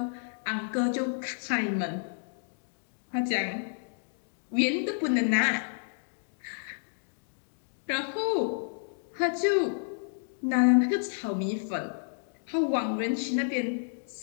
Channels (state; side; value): silent; right; digital silence